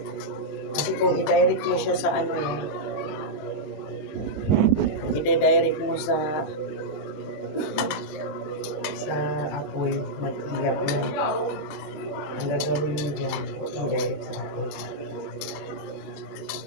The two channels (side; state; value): right; late; 19 ms